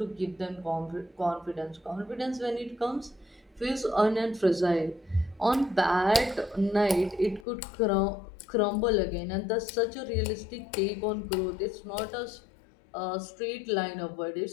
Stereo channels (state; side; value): drops out; right; at 7.5 s